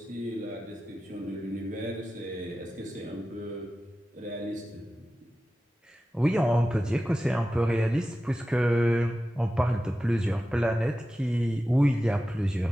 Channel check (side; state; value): both; normal; correlation 0.94